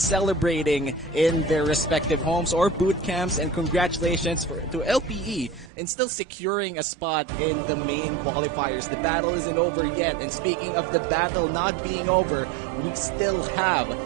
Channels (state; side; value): drops out; left; at 5.7 s